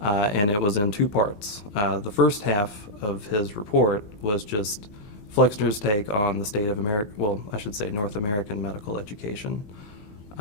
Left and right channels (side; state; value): right; late; 19 ms